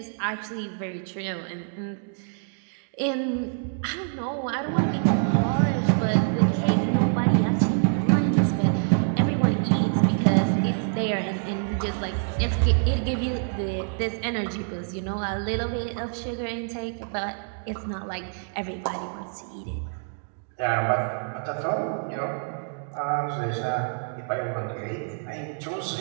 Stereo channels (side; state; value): left; silent; digital silence